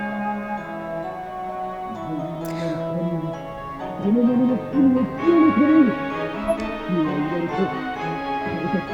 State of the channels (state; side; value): identical; both; correlation 1.00